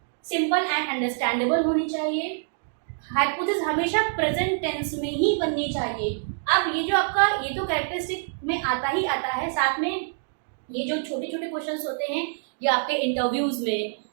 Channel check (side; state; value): left; silent; digital silence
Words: सिंपल एंड अंडरस्टैंडेबल होनी चाहिए, हाइपोथेसिस हमेशा प्रेजेंट टेंस में ही बननी चाहिए। अब ये जो आपका ये तो कैरेक्टरिस्टिक में आता ही आता है, साथ में ये जो छोटे छोटे क्वेश्चंस होते हैं ये आपके इंटरव्यूज में,